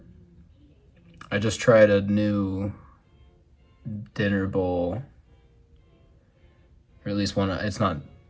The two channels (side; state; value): both; identical; correlation 1.00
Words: I just tried a new dinner bowl, or at least one. It's not